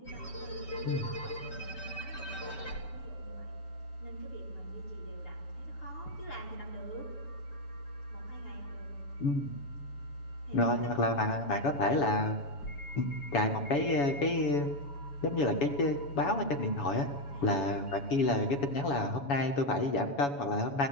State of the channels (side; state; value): right; late; 7.1 ms